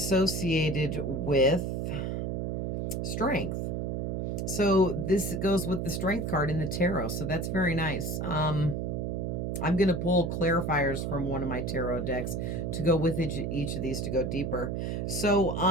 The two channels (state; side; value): noise; right; hum, 2 dB below the sound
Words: with strength. So this goes with the strength card in the tarot. So that's very nice. I'm going to pull clarifiers from one of my tarot decks to go with each of these to go deeper. So,